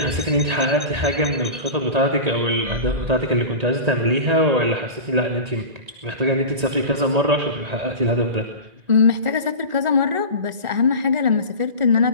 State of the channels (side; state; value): left; late; 1.8 ms